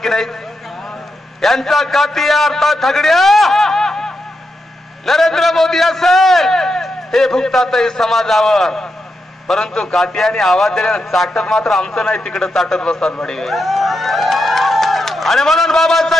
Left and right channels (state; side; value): normal; both; correlation 0.86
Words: की नाही? यांचा कातिया अर्थात थगड्या नरेंद्र मोदी असेल हे भुगतातही समाजावर, परंतु कात्याने आवाज दिल्याने चाटत मात्र आमचं नाही, तिकडे चाटत बसतात बडे. आणि म्हणून